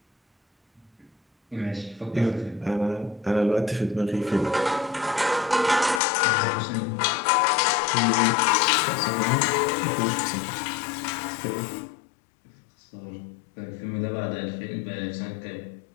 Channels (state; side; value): drops out; right; at 6.0 s